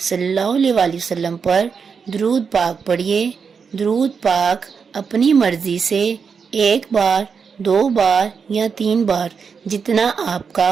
صلی اللہ علیہ وآلہ وسلم پر درود پاک پڑھیے۔ درود پاک اپنی مرضی سے 1 بار، 2 بار یا 3 بار جتنا آپ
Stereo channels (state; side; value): quieter; left; 5.9 dB